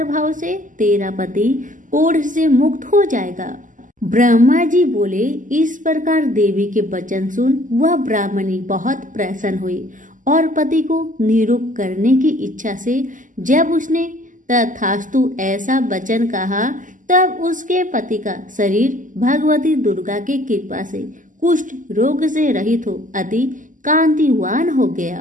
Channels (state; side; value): late; left; 0.38 ms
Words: से तेरा पति कोढ़ से मुक्त हो जाएगा। ब्रह्मा जी बोले, इस प्रकार देवी के वचन सुन वह ब्राह्मणी बहुत प्रसन्न हुई और पति को निरुक्त करने की इच्छा से जब उसने तथास्तु ऐसा वचन कहा, तब उसके पति का शरीर भगवती दुर्गा की कृपा से कुष्ठ रोग से रहित हो अति कांतिवान हो